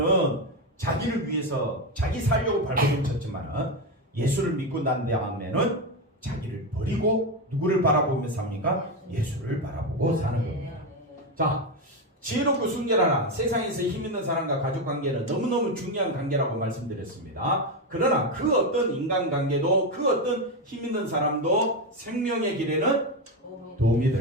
자기를 위해서 자기 살려고 발버둥 쳤지만 예수를 믿고 난 다음에는 자기를 버리고 누구를 바라보며 삽니까? 예수를 바라보고 사는 겁니다. 자, 지혜롭고 순결하라. 세상에서 힘 있는 사람과 가족 관계는 너무너무 중요한 관계라고 말씀드렸습니다. 그러나 그 어떤 인간관계도 그 어떤 힘 있는 사람도 생명의 길에는 도움이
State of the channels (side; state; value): both; normal; correlation 0.11